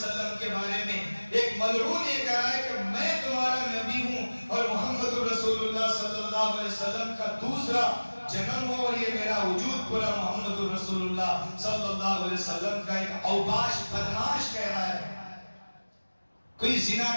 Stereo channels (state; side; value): inverted; both; correlation -1.00